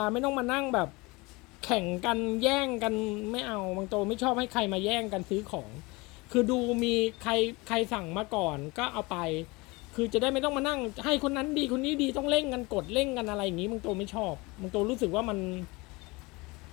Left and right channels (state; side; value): quieter; right; 24.5 dB